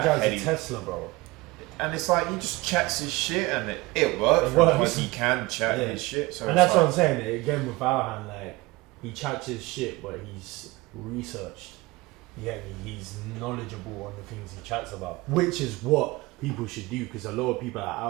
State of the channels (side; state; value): left; quieter; 21.8 dB